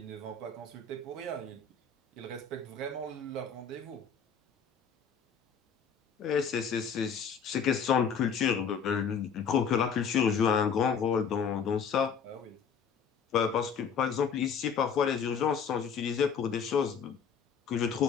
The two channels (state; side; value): quieter; right; 6.5 dB